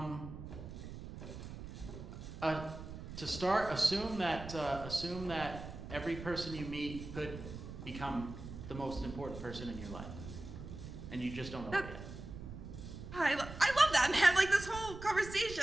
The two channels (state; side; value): noise; right; rumble, 10 dB below the sound